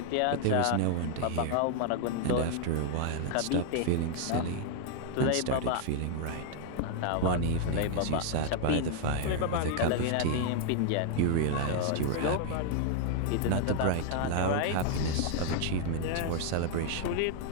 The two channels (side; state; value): both; different; correlation 0.00